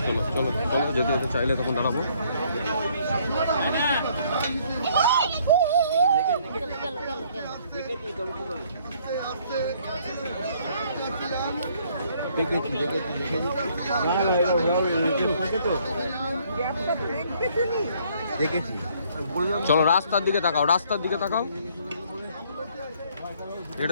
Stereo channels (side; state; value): both; inverted; correlation -0.64